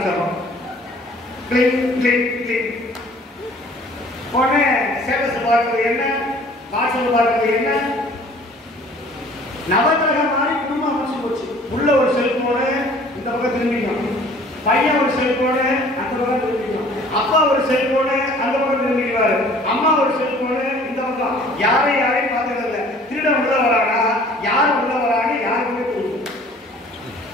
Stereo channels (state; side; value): normal; both; correlation 0.52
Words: Click click click. உடனே ஸ்டேட்டஸ் பார்க்கறது என்ன, வாட்ஸ்அப் பார்க்கறது என்ன, நவகிரகம் மாதிரி குடும்பம் அமைச்சு போச்சு. உள்ள ஒரு செல்போனு இந்த பக்கம் திரும்பிக்கும், பையன் ஒரு செல்போனு அந்த பக்கம் திரும்பிக்கும், அப்பா ஒரு செல்போனு அந்த பக்கம் திரும்பிக்குவாரு, அம்மா ஒரு செல்போனு இந்த பக்கம். யாரையும் பார்த்தது இல்லை. திருடன் உள்ள வரானா, யார் உள்ள வரான்னு யாருக்குமே தெரியும்.